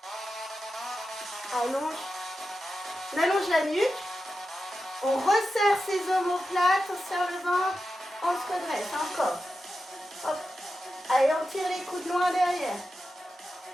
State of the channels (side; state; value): both; normal; correlation 0.91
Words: Allonge. On allonge la nuque. On resserre ses omoplates. On serre le ventre. On se redresse. Encore. Hop. Allez, on tire les coudes loin derrière.